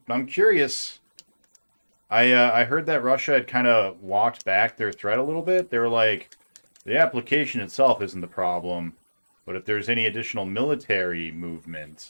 I'm curious. I heard that Russia had kind of walked back their threat a little bit. They were like, the application itself isn't the problem, but if there's any additional military movement,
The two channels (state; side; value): inverted; both; correlation -1.00